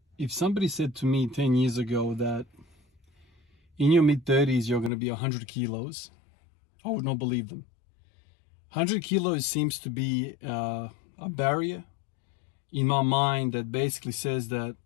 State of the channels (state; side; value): drops out; right; at 4.9 s